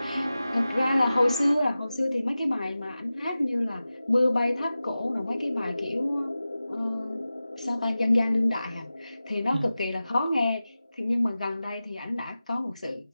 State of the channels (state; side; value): inverted; both; correlation -0.95